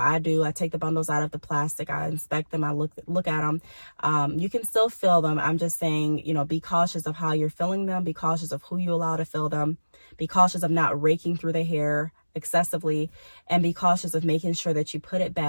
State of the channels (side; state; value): both; inverted; correlation -1.00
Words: take the bundles out of the plastic, I inspect them, I look at them. You can still fill them. I'm just saying, be cautious of how you're filling them, be cautious of who you allow to fill them, be cautious of not raking through the hair excessively, and be cautious of making sure that you put it